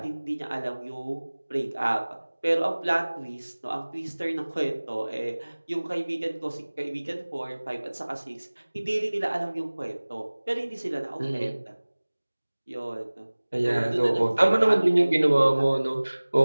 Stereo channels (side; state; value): both; inverted; correlation -1.00